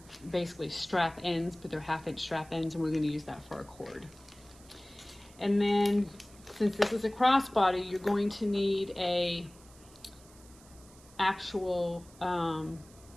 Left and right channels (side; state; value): right; noise; hiss, 24 dB below the sound